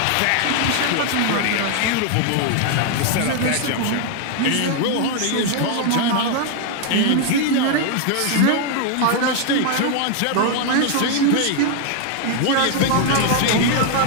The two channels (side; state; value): both; different; correlation 0.00